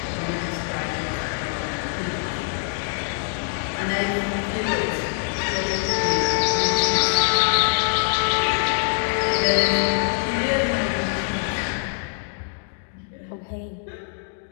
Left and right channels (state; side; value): silent; right; digital silence